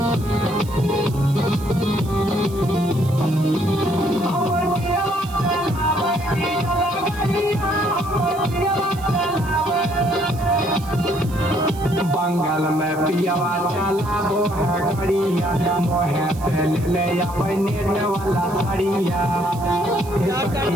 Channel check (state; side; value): noise; right; hiss, 19 dB below the sound